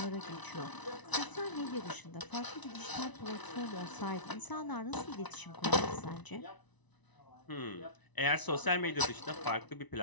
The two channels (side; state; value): right; late; 1.0 ms